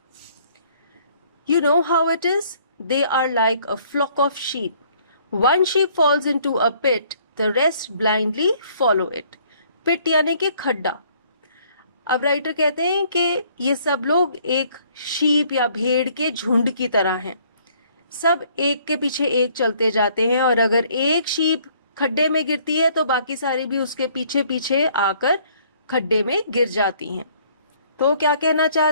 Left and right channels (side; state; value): both; inverted; correlation -0.61